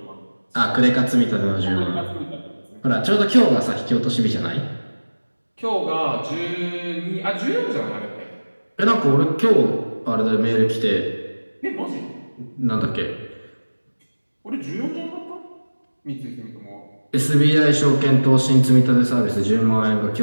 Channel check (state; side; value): inverted; both; correlation -1.00